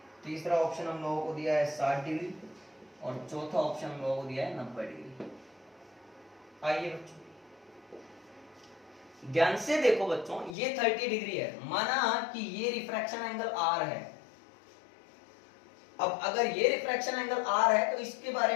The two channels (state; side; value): drops out; right; at 10.6 s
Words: तीसरा ऑप्शन हम लोगों को दिया है 60 डिग्री, और चौथा ऑप्शन हम लोगों को दिया है 90 डिग्री। आइए बच्चों ध्यान से देखो बच्चों, ये 30 डिग्री है, माना कि ये रिफ्रैक्शन एंगल आर है। अब अगर ये रिफ्रैक्शन एंगल आर है तो इसके बारे